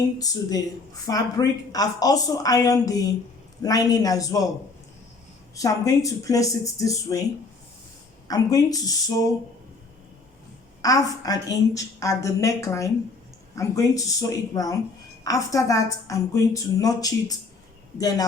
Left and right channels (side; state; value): right; quieter; 3.9 dB